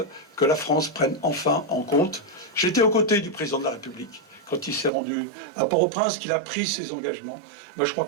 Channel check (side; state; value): left; drops out; at 4.9 s